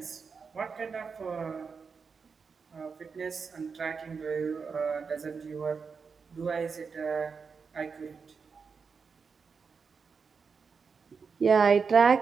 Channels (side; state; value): left; quieter; 5.4 dB